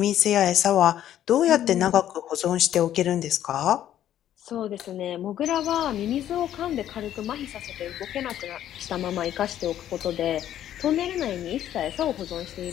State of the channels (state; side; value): quieter; right; 11.5 dB